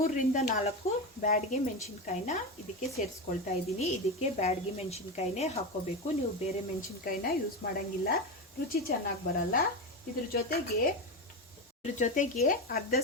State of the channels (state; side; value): normal; both; correlation 0.17